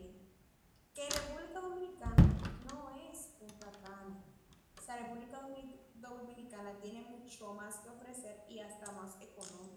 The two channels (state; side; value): identical; both; correlation 1.00